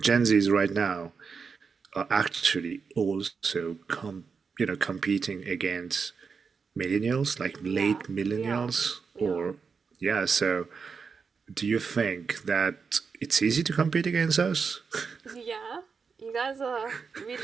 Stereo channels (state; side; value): quieter; left; 5.4 dB